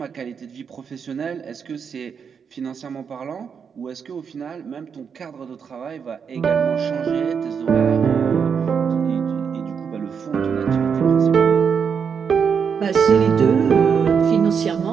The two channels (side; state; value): left; quieter; 6.6 dB